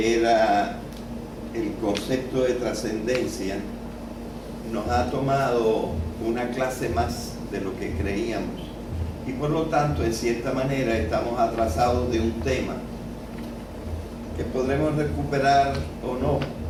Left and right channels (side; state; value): both; identical; correlation 1.00